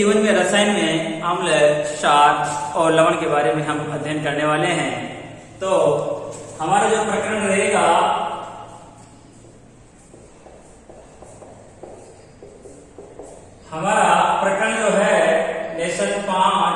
में रसायन में अम्ल, क्षार और लवण के बारे में हम अध्ययन करने वाले हैं। तो हमारा जो प्रकरण रहेगा हमारा प्रकरण जो है लेसन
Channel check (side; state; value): both; identical; correlation 1.00